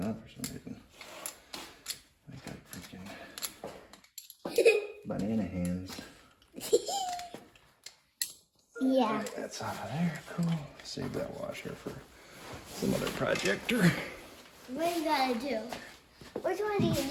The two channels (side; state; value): both; identical; correlation 1.00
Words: on for some reason. I got freaking banana hands. Yeah. Right, that's out of there. Cool. Save that washer for some other projector. What do you gotta do? Which one do you